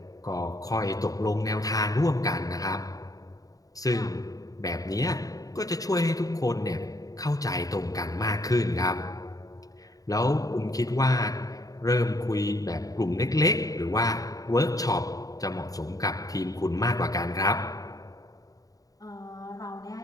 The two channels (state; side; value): late; right; 0.17 ms